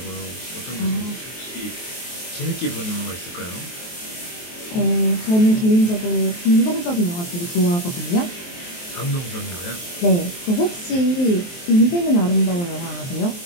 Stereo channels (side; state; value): right; late; 23 ms